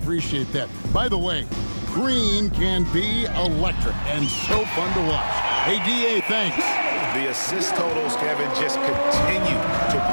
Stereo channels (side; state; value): both; inverted; correlation -1.00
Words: that. By the way, Green can be electric and so fun to watch. Hey, D.A., thanks. The assist totals, Kevin, just continue to